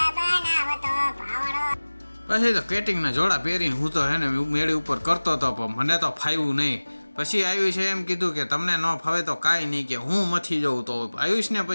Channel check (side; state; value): both; inverted; correlation -1.00